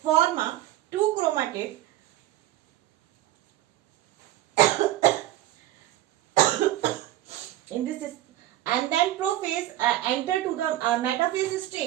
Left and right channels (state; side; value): quieter; left; 14.3 dB